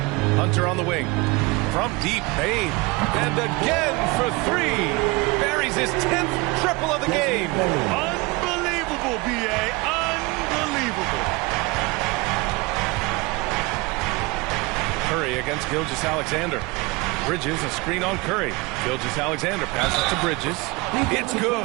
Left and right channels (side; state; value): left; quieter; 25.0 dB